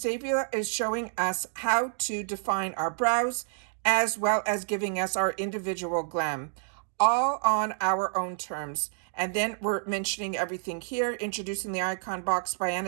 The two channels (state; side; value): silent; left; 59 dB below the other